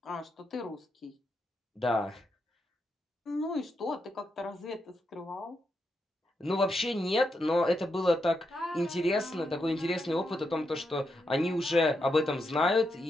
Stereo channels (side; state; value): both; normal; correlation 0.83